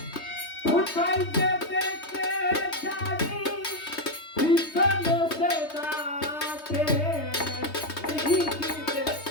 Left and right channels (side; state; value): right; late; 3.2 ms